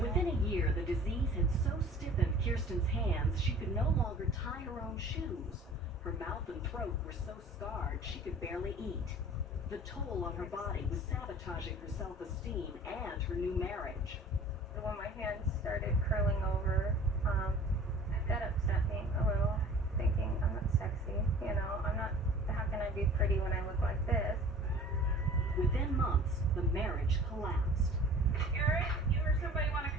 a year, the disease had so stiffened Kirsten's hands she could no longer tie her own shoes. Her mouth and throat were so scarred she could barely eat. The toll on her body was sabotaging her self-esteem and her new marriage. When my hands started curling over, that upset me a little, thinking I'm not sexy, you know, how can I be pretty when I look like this? Within months, the marriage collapsed. Eric, you or somebody want to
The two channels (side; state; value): both; normal; correlation 0.46